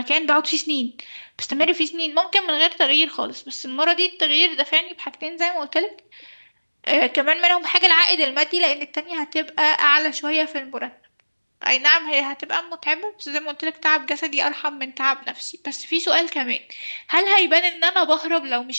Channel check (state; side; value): inverted; both; correlation -1.00